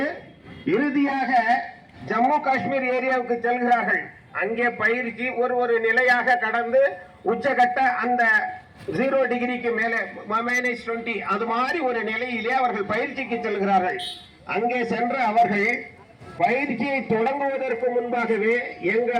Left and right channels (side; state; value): both; identical; correlation 1.00